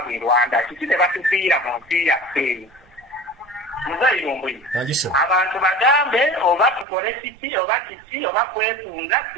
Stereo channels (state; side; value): drops out; left; at 6.9 s